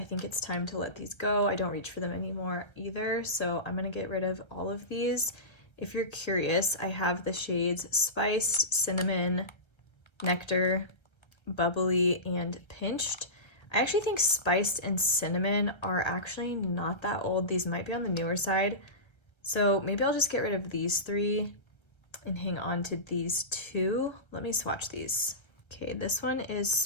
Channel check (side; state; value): right; late; 1.3 ms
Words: think it's time to let these go. I don't reach for them anymore either, so I'm gonna get rid of all of these. If you're curious, I have the shades Spiced, Cinnamon, Nectar, Bubbly, and Pinched. I actually think Spiced and Cinnamon are actually not that old. These might be on the newer side, so maybe I'll just get rid of these three and hang on to these two. Let me swatch these. Okay, this one is